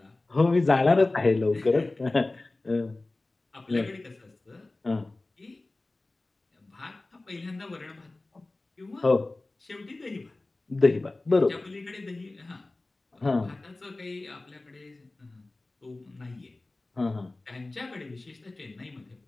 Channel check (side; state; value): right; quieter; 3.0 dB